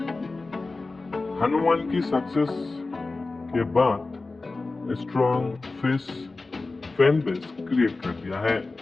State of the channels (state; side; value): quieter; right; 3.5 dB